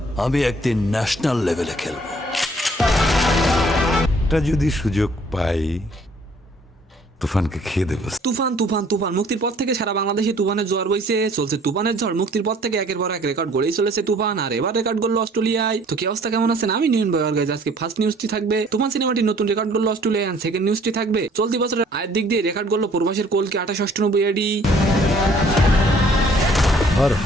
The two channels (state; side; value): normal; both; correlation 0.58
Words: আমি একদিন ন্যাশনাল লেভেলে খেলবো। এটা যদি সুযোগ পাই তুফানকে খেয়ে দেবো। তুফান তুফান তুফান মুক্তির পর থেকে সারা বাংলাদেশে তুফানের ঝড় বইছে, চলছে তুফানের ঝড়। মুক্তির পর থেকে একের পর এক রেকর্ড গড়েই চলেছে তুফান, আর এবার রেকর্ড করলো অস্ট্রেলিয়ায়। তো কি অবস্থা, কেমন আছেন? আমি নিউন বয়ার গাইজ। আজকে ফার্স্ট নিউজটি থাকবে তুফান সিনেমাটি নতুন রেকর্ড করলো অস্ট্রেলিয়া, এন্ড সেকেন্ড নিউজটি থাকবে চলতি বছরের আয়ের দিক দিয়ে রেকর্ড করলো প্রবাসের কলকে 2898 এডি। हर